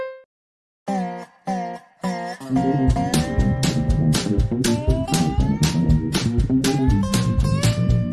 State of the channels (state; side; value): identical; both; correlation 1.00